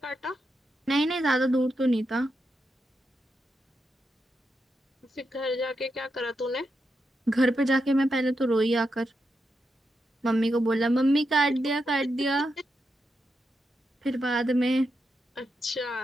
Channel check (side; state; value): both; normal; correlation 0.85